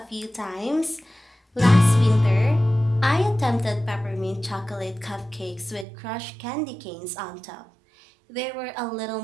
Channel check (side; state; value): left; drops out; at 5.9 s